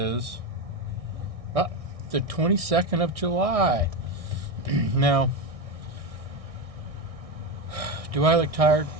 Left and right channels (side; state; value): left; late; 1.6 ms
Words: the 22nd of July. Now, do I look tired?